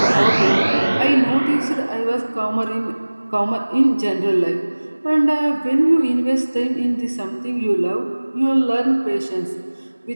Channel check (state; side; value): inverted; both; correlation -1.00